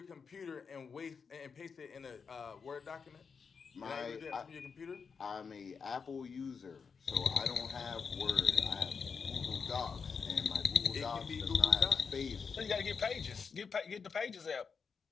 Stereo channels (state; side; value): quieter; right; 5.7 dB